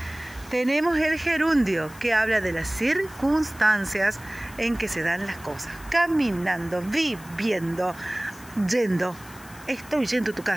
Tenemos el gerundio, que habla de las circunstancias en que se dan las cosas. Caminando, viviendo, yendo. Estoy yendo a tu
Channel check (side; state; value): left; noise; hiss, 20 dB below the sound